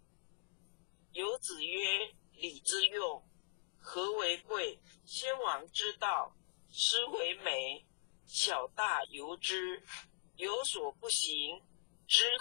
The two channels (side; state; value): right; silent; digital silence